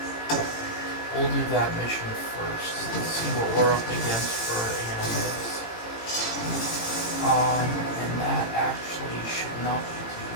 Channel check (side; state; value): right; late; 18 ms